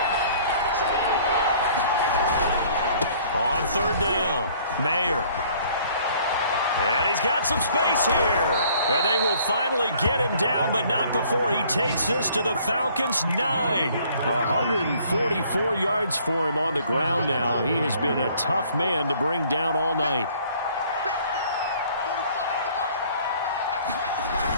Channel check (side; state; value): both; inverted; correlation -0.57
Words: On third down, Mayer. And he's got some space here. And they will finally get him down, but not before he takes this to the Falcons' 9. 144 yards for him on the ground now. He has been a tough man to bring down all night.